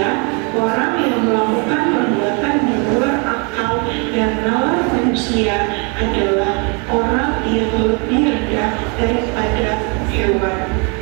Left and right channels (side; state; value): left; quieter; 33.9 dB